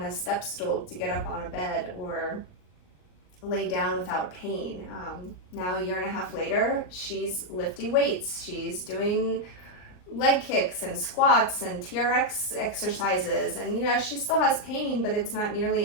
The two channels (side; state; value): right; late; 39 ms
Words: a step stool to get up on a bed or lay down without pain. Now 1.5 years later, she's lifting weights. She's doing leg kicks and squats and TRX exercises, and she still has pain, but it's not